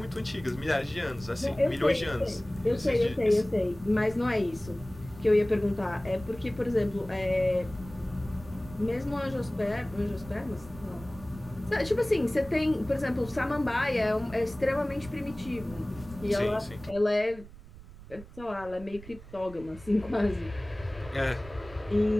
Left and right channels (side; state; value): right; noise; rumble, 17 dB below the sound